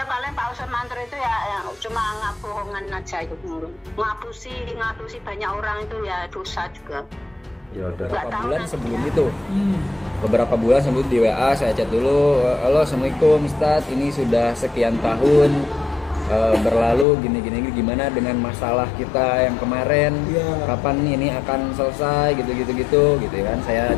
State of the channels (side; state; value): right; drops out; at 17.1 s